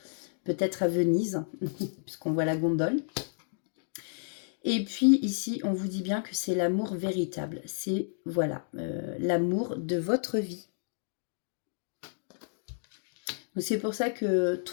Peut-être à Venise, puisqu'on voit la gondole. Et puis ici, on vous dit bien que c'est l'amour véritable. C'est, voilà, l'amour de votre vie. Donc c'est pour ça que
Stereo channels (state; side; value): silent; right; digital silence